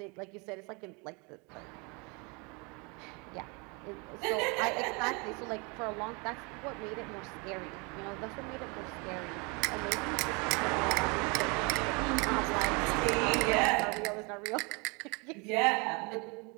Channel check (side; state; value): left; quieter; 30.2 dB